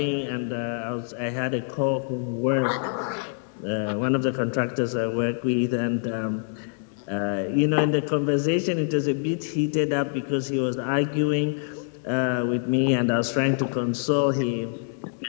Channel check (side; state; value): right; silent; 60 dB below the other